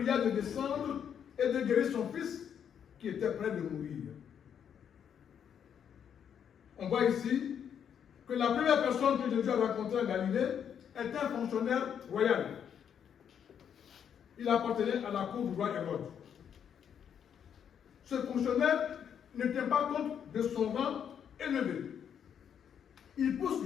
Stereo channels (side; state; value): right; quieter; 8.3 dB